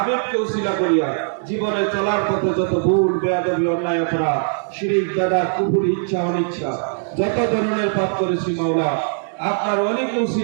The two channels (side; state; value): left; silent; digital silence